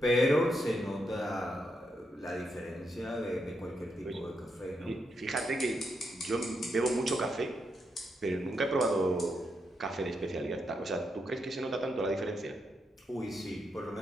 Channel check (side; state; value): both; normal; correlation 0.82